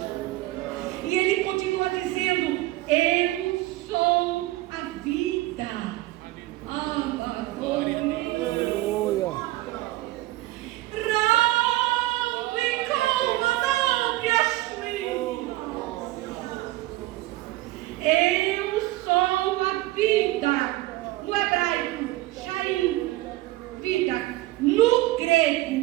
E ele continua dizendo: eu sou a vida. Eu sou a vida. No hebraico, Shaim, vida. No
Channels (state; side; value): quieter; left; 17.9 dB